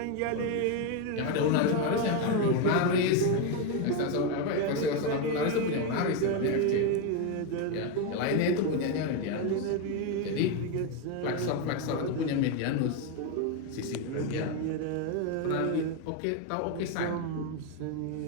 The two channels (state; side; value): different; both; correlation 0.02